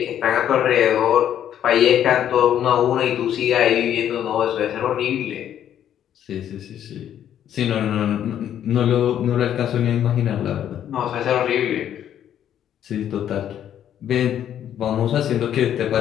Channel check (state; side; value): quieter; right; 10.3 dB